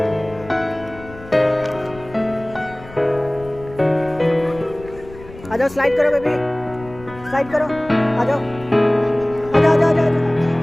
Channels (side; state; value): left; noise; rumble, 18 dB below the sound